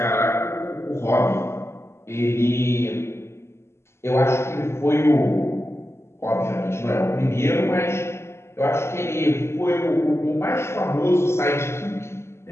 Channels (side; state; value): right; late; 0.13 ms